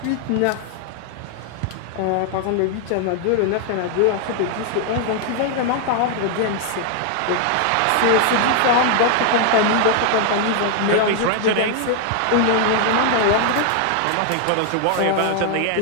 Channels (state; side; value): different; both; correlation 0.00